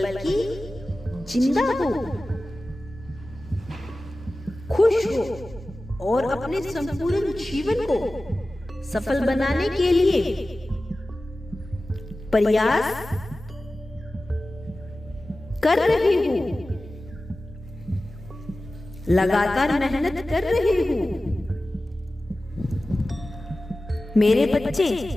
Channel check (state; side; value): normal; both; correlation 0.96